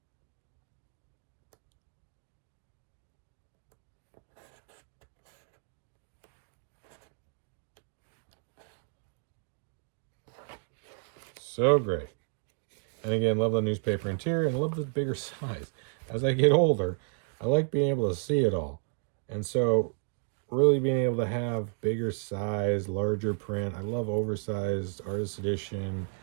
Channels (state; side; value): silent; left; 56 dB below the other